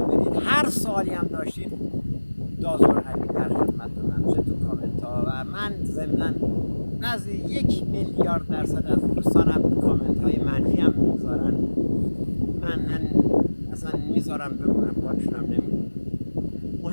بدید. هر سوالی هم داشتید دازور علی در خدمتتونم، چه تو کامنت ها و من ضمناً نزدیک 1 میلیارد درصد از دوستانم کامنت های منفی هم میذارن. من اصلا میذارم بمونم، پاکشونم نمیکنم،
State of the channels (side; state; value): both; inverted; correlation -1.00